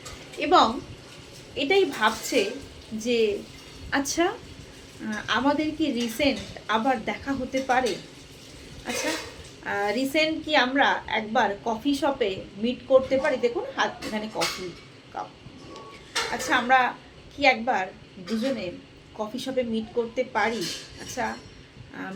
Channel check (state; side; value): identical; both; correlation 1.00